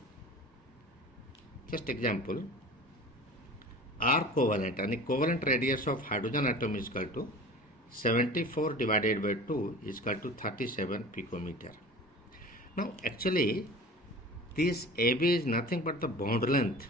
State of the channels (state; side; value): normal; both; correlation 0.39